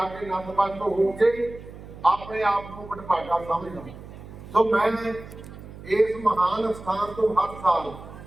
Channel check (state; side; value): noise; right; hum, 15 dB below the sound